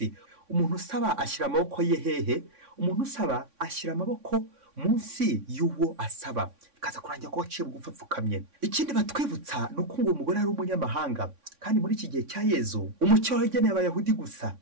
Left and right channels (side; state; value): left; late; 3.6 ms